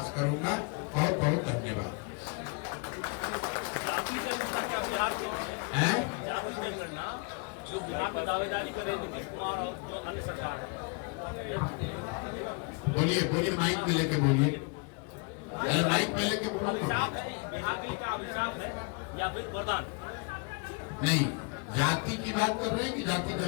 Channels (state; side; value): quieter; right; 33.4 dB